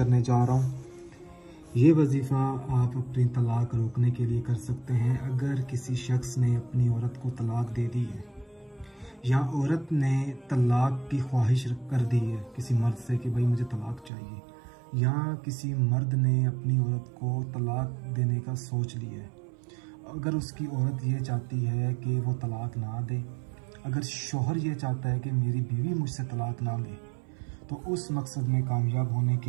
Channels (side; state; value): left; drops out; at 14.1 s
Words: जा रहा हूँ। ये वजीफ़ा आप अपनी तलाक रोकने के लिए कर सकते हैं। अगर किसी शख्स ने अपनी औरत को तलाक दे दी है या औरत ने तलाक की ख्वाहिश कर दी है किसी मर्द से कि भाई मुझे तलाक चाहिए, या किसी मर्द ने अपनी औरत को तलाक देने का सोच लिया है, अगर उसकी औरत ये चाहती है कि वो तलाक ना दे, अगर शौहर ये चाहता है कि मेरी बीवी मुझसे तलाक ना ले, तो उस मकसद में कामयाब होने